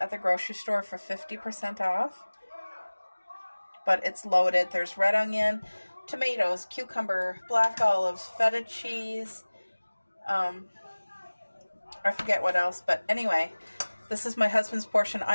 at the grocery store for 50% off. But it's loaded. There's red onion, tomatoes, cucumber, black olives, feta cheese. I forget what else. But anyway, this is my husband's portion.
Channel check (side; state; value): both; inverted; correlation -1.00